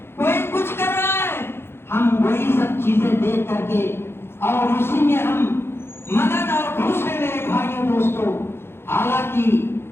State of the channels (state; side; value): late; right; 0.11 ms